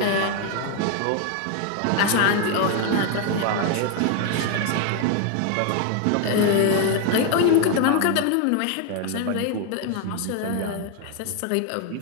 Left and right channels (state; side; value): different; both; correlation 0.01